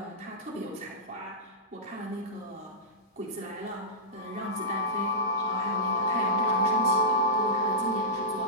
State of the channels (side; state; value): both; normal; correlation -0.15